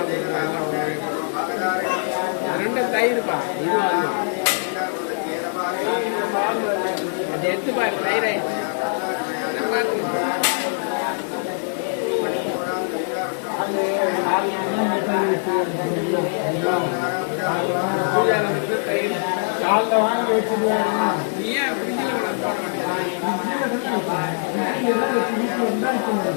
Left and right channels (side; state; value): right; silent; digital silence